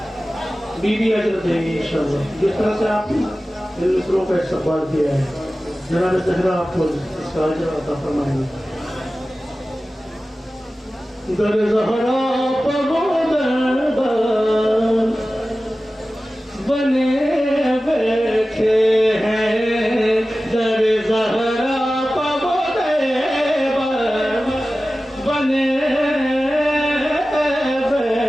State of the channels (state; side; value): normal; both; correlation 0.96